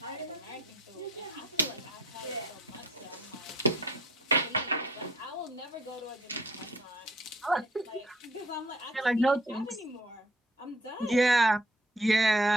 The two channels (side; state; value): both; normal; correlation 0.58